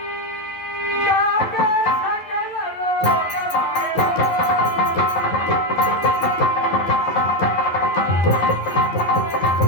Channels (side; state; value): right; late; 11 ms